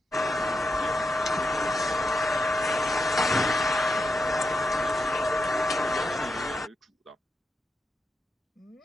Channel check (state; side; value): normal; both; correlation 0.85